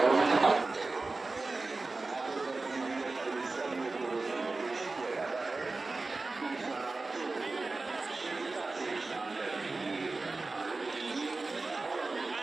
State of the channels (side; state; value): left; quieter; 3.5 dB